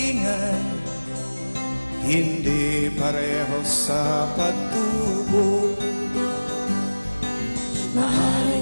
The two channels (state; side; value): inverted; both; correlation -1.00